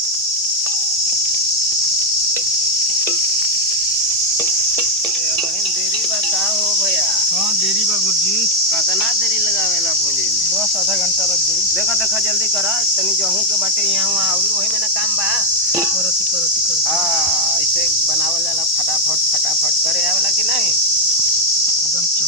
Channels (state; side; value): normal; both; correlation 0.01